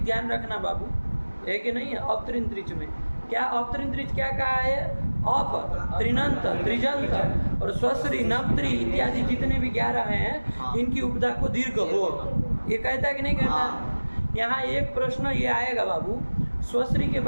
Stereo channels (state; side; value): inverted; both; correlation -1.00